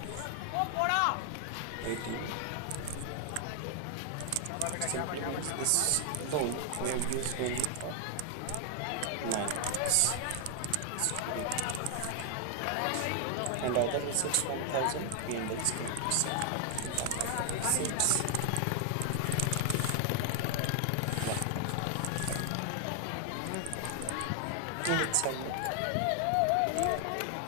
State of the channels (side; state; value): both; different; correlation 0.00